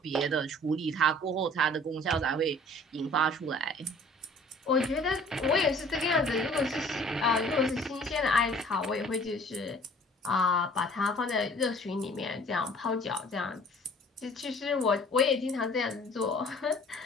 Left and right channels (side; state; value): both; normal; correlation 0.52